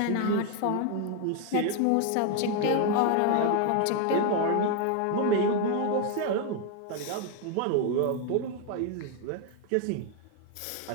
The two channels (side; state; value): both; different; correlation 0.01